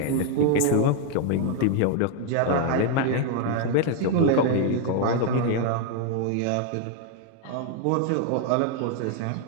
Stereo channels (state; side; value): different; both; correlation 0.01